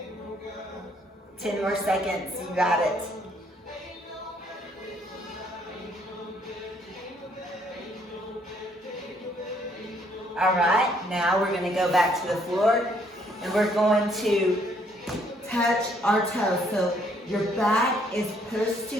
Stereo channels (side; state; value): both; normal; correlation 0.67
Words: 10 more seconds, you got it. Now we're going to go back to the floor and we're going to touch our toes. So your back is pushed to